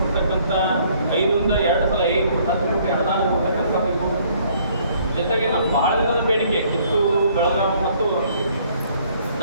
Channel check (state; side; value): inverted; both; correlation -0.62